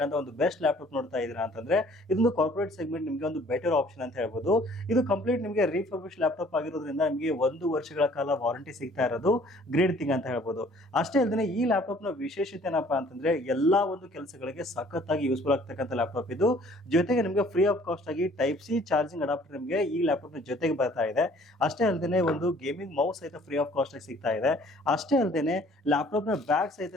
ಒಂದು ಬೆಸ್ಟ್ ಲ್ಯಾಪ್ಟಾಪ್ ನೋಡ್ತಾ ಇದ್ದೀರಾ ಅಂತಂದ್ರೆ ಇದೊಂದು ಕಾರ್ಪೊರೇಟ್ ಸೆಗ್ಮೆಂಟ್ ನಿಮಗೆ ಒಂದು ಬೆಟರ್ ಆಪ್ಷನ್ ಅಂತ ಹೇಳ್ಬೋದು. ಇದು ಕಂಪ್ಲೀಟ್ ನಿಮಗೆ ರೀಫರ್ಬಿಶ್ ಲ್ಯಾಪ್ಟಾಪ್ ಆಗಿರೋದ್ರಿಂದ ನಿಮಗೆ 1 ವರ್ಷಗಳ ಕಾಲ ವಾರಂಟಿ ಸಿಗ್ತಾ ಇರೋದು ಗ್ರೇಟ್ ಥಿಂಗ್ ಅಂತ ಹೇಳ್ಬೋದು. ಅಷ್ಟೇ ಅಲ್ಲದೆ ಈ ಲ್ಯಾಪ್ಟಾಪ್ ನ ವಿಶೇಷತೆ ಏನಪ್ಪಾ ಅಂತಂದ್ರೆ ಎಲ್ಲಾ ಒಂದು ಕೆಲಸಗಳಿಗೆ ಸಖತ್ತಾಗಿ ಯೂಸ್ಫುಲ್ ಆಗ್ತಕ್ಕಂಥ ಲ್ಯಾಪ್ಟಾಪ್ ಇದು. ಜೊತೆಗೆ ನಿಮಗೆ ಫ್ರೀ ಆಫ್ ಕಾಸ್ಟ್ ಆಗಿ ಟೈಪ್ ಸಿ ಚಾರ್ಜಿಂಗ್ ಅಡಾಪ್ಟರ್ ನಿಮಗೆ ಈ ಲ್ಯಾಪ್ಟಾಪ್ ನ ಜೊತೆಗೆ ಬರ್ತಾ ಇದೆ. ಅಷ್ಟೇ ಅಲ್ಲದೆ ಒಂದು ಗೇಮಿಂಗ್ ಮೌಸ್ ಸಹಿತ ಫ್ರೀ ಆಫ್ ಕಾಸ್ಟ್ ಆಗಿ ಸಿಗ್ತಾ ಇದೆ. ಅಷ್ಟೇ ಅಲ್ಲದೆ ಲ್ಯಾಪ್ಟಾಪ್ ನ ಬ್ಯಾಗ್ ಸಹಿತ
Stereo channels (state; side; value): normal; both; correlation 0.56